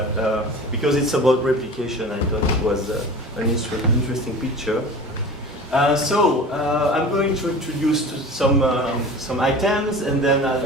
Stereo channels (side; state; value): both; normal; correlation 0.37